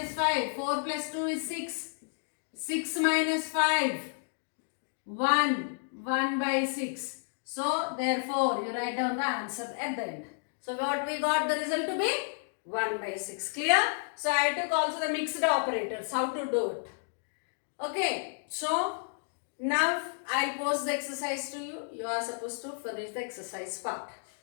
5. 4 plus 2 is 6. 6 minus 5. 1. 1 by 6. So therefore you write down the answer at the end. So what we got the result to be? 1 by 6. Clear? So I took also the mixed operators. How to do it? Okay. So now I'll post the exercise to you. You are supposed to finish the exercise part.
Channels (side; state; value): right; silent; digital silence